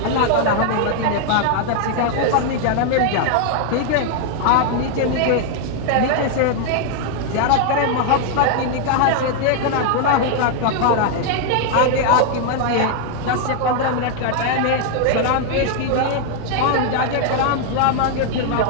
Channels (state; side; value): different; both; correlation 0.00